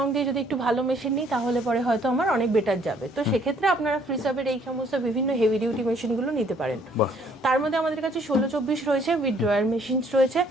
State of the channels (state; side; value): normal; both; correlation 0.63